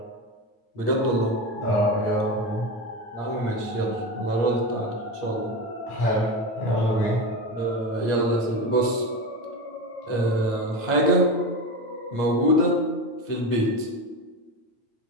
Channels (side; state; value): right; late; 8.5 ms